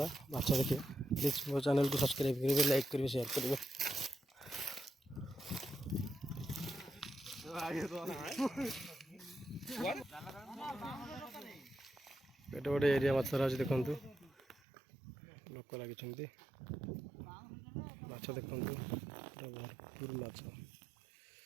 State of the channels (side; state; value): left; drops out; at 14.6 s